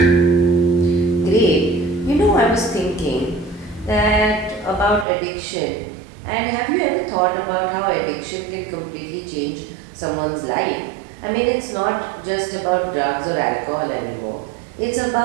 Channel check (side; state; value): left; drops out; at 5.1 s